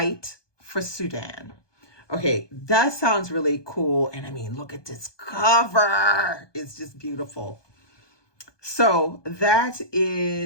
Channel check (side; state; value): right; late; 1.2 ms